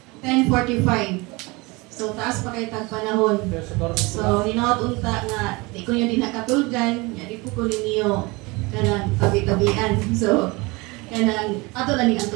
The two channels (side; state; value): left; quieter; 24.9 dB